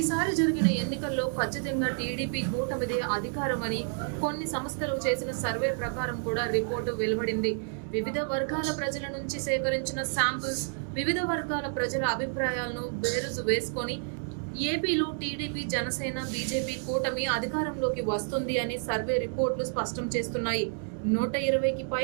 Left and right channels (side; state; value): left; silent; 58 dB below the other